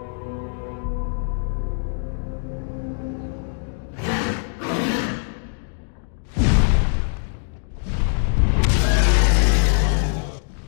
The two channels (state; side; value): silent; right; 64 dB below the other